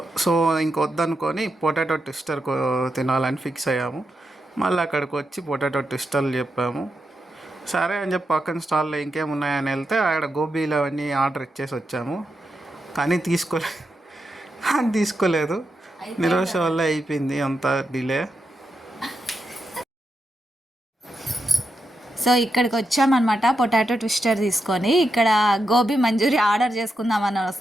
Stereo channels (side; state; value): both; normal; correlation 0.86